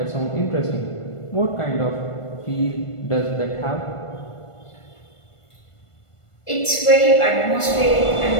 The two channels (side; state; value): right; late; 1.5 ms